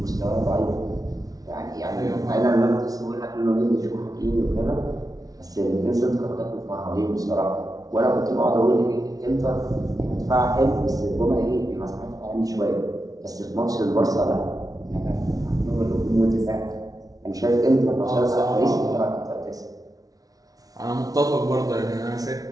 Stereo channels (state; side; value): late; left; 0.18 ms